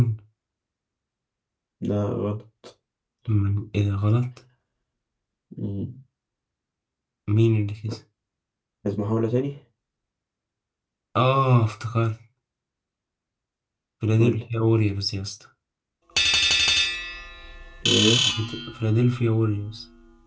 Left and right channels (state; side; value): identical; both; correlation 1.00